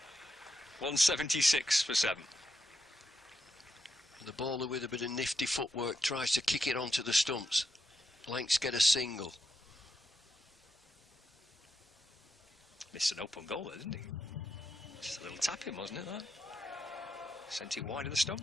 176 for 7. And the bowler with a bit of nifty footwork tries to kick it onto the stumps. Lancs get a single. Missed an open goal there, didn't he? Just a little tapping, wasn't it, that? Sent it wide of the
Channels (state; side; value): normal; both; correlation 0.84